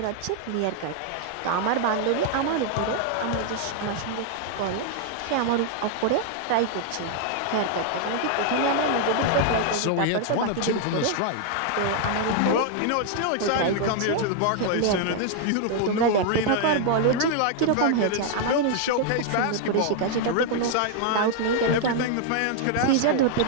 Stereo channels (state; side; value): different; both; correlation 0.00